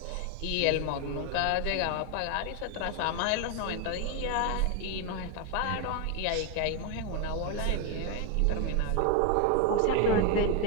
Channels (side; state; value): both; different; correlation 0.01